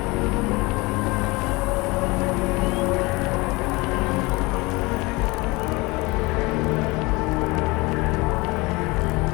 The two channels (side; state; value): right; quieter; 24.1 dB